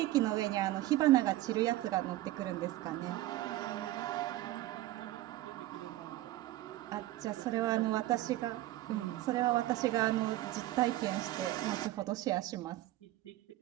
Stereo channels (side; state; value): left; quieter; 15.9 dB